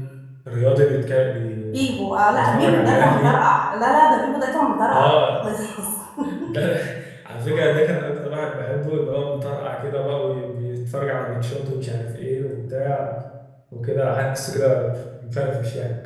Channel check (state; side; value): identical; both; correlation 1.00